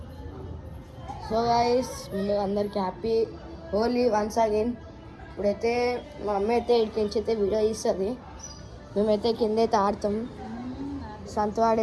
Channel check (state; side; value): identical; both; correlation 1.00